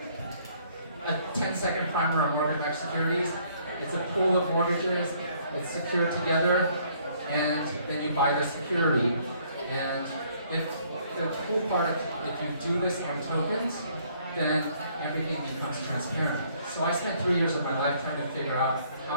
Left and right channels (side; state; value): both; inverted; correlation -0.64